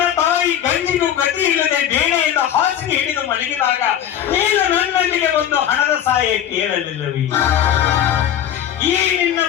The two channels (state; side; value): quieter; right; 10.4 dB